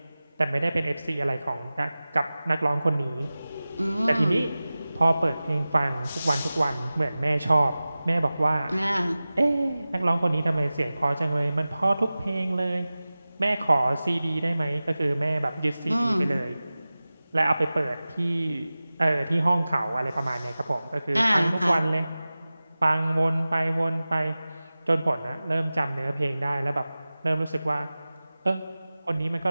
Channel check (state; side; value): inverted; both; correlation -0.97